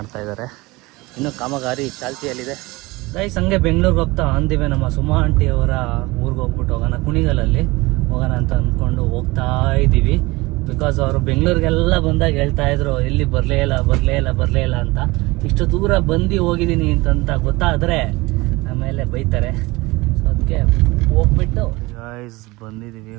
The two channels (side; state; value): left; quieter; 22.3 dB